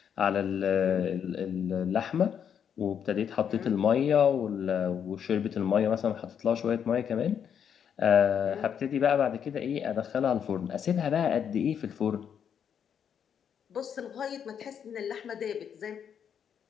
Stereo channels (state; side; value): quieter; right; 8.1 dB